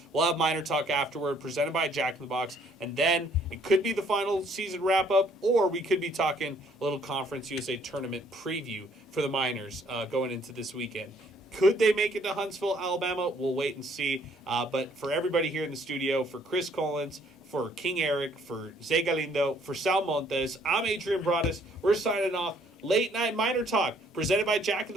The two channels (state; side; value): normal; both; correlation 0.63